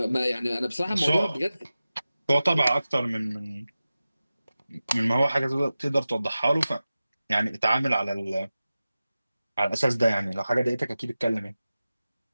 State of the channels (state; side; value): inverted; both; correlation -0.95